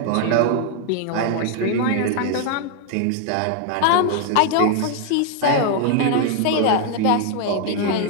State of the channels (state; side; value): different; both; correlation 0.00